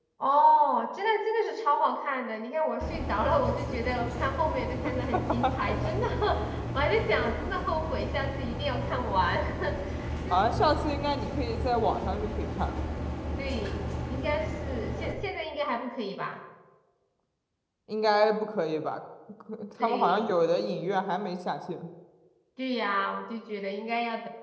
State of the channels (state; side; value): identical; both; correlation 1.00